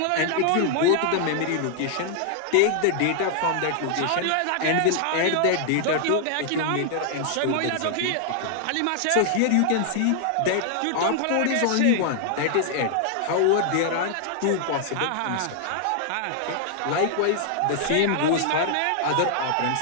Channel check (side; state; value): both; different; correlation 0.00